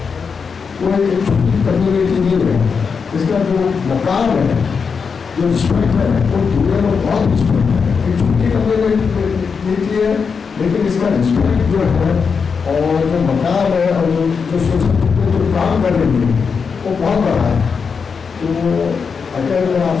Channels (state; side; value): quieter; right; 5.7 dB